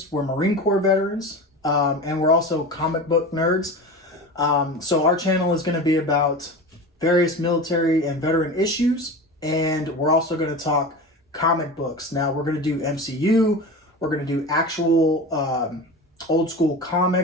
We're Marine Corps veterans, and we're also comic book nerds. So our channel is going to be about various military and veteran issues, and we're also going to talk comic books. Now we're going to do MCU. We're going to do actual old school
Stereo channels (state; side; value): normal; both; correlation 0.30